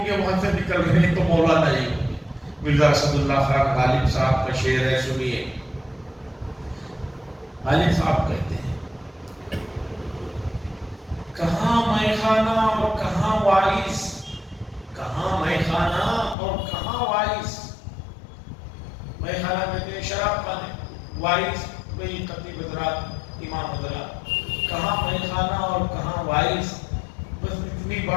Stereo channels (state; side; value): drops out; right; at 16.4 s